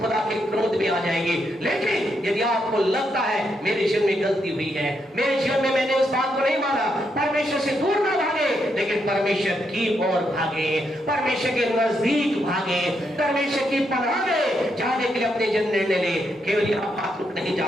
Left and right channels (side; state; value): both; normal; correlation 0.80